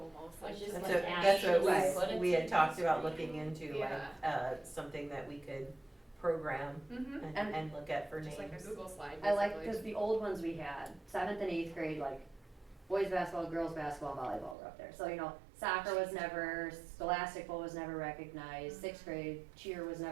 like Just just like like. That's Right. what we had talked about looking into, like, Yeah. something that we could program Mm-hmm, and look at for names. just like a Google slide, I like, basically. cause the old ones we had, 7th and 8th grade, like, boys basketball, girls basketball, volleyball were up there. So, you know, soccer was never, scholastic bowl was never recognized, 6th grade cheer was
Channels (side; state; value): left; drops out; at 14.6 s